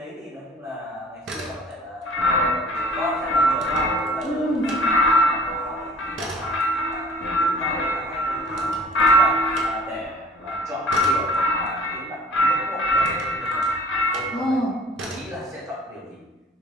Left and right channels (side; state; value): both; normal; correlation 0.50